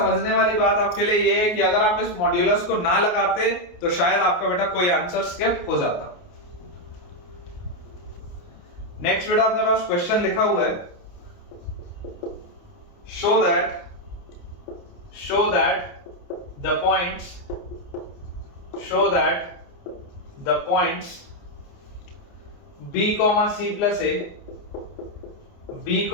वाली बात आपके लिए ये है कि अगर आप इस मॉड्यूलस को ना लगाते तो शायद आपका बेटा कोई आंसर स्किप हो जाता। नेक्स्ट बेटा अपने पास क्वेश्चन लिखा हुआ है, show that the points show that the points b comma c plus a, b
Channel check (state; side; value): late; right; 29 ms